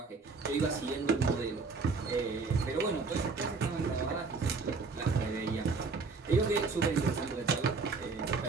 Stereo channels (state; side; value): quieter; left; 4.3 dB